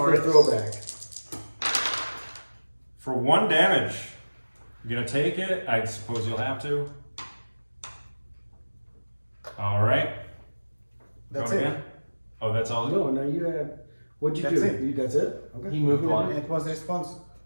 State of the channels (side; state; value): both; inverted; correlation -1.00